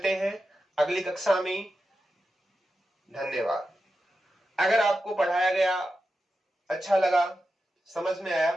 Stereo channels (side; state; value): both; normal; correlation 0.90